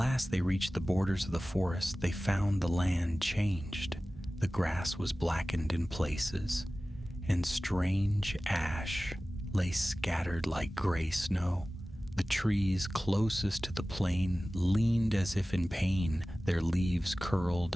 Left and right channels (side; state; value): both; normal; correlation 0.97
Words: they reached the borders of the forest, they found the land changed. The grass was blackened in places, and strange ash lay scattered like gray snow. The trees closest to the plain leaned as if in pain, their leaves curled